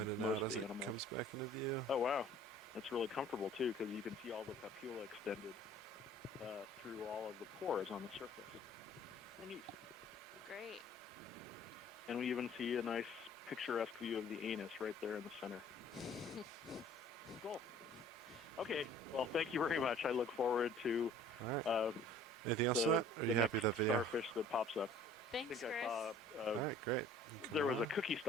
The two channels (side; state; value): both; normal; correlation 0.51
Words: most of the animals. Comes back into view. Oh wow, that's really comfortable too, because you can see all the papilla extended through all of the pores on the surface. Oh, neat. Great. And we even see a nice picturesque view of the anus right there in the center. Cool. Okay. Well, thank you very much. I look forward to anything else? Are you the happy next with that video? starfish that pops up. Thanks, I think Chris. I saw. All right, great. There was a cookie